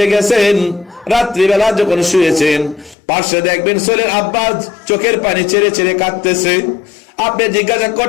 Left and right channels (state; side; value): drops out; right; at 3.0 s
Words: গেছেন, রাত্রিবেলা যখন শুয়েছেন, পাশে দেখবেন ছেলের আব্বা চোখের পানি ছেড়ে ছেড়ে কাঁদতেছে। আপনি জিজ্ঞাসা